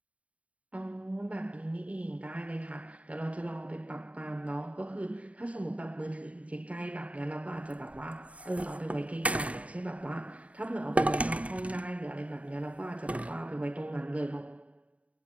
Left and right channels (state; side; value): late; left; 0.066 ms